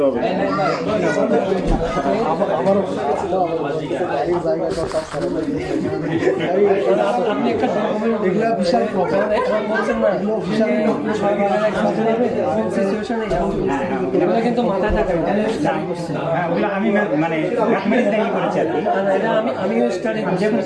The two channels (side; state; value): both; identical; correlation 1.00